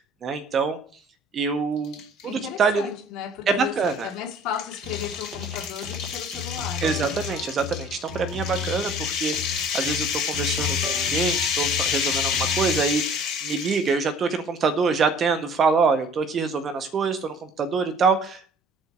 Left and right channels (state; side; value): normal; both; correlation 0.50